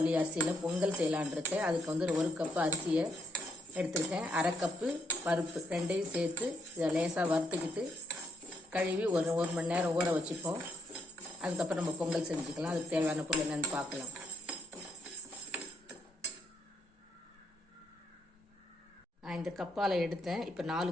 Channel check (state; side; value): normal; both; correlation 0.75